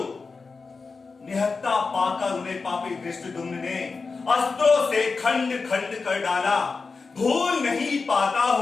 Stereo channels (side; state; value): right; quieter; 4.4 dB